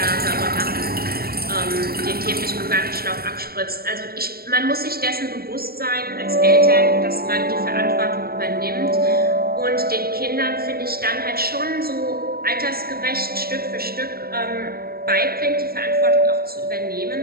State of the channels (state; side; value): late; left; 0.44 ms